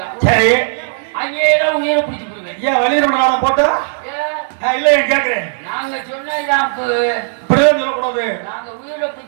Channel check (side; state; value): left; silent; digital silence